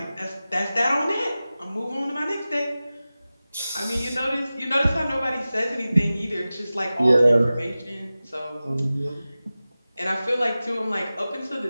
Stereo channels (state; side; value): inverted; both; correlation -0.96